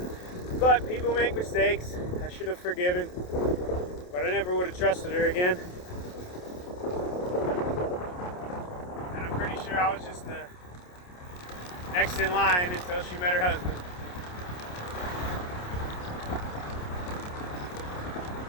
But people make mistakes. I should have forgiven. But I never would have trusted her again. And I'm pretty sure I was just the next in line until she met her husband.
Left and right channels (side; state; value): right; late; 28 ms